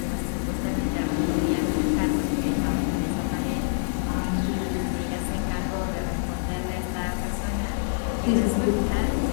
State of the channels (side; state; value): right; silent; digital silence